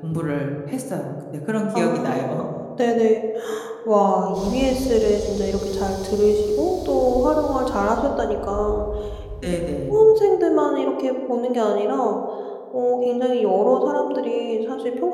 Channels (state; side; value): identical; both; correlation 1.00